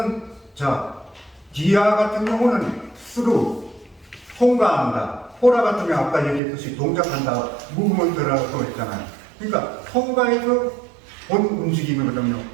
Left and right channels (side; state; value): left; drops out; at 6.4 s